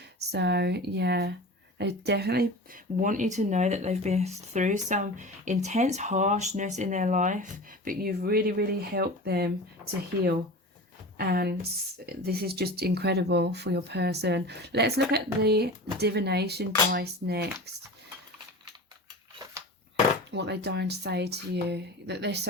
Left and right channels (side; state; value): both; normal; correlation 0.33